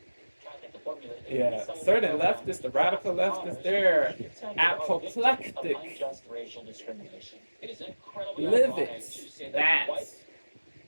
to formulate a Yeah, resettlement certain program leftists, the for radical Afrikaners leftists, who they're he contended are victims of apoplectic. unjust racial discrimination. It is incredibly Livid ironic to say that white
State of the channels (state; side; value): inverted; both; correlation -1.00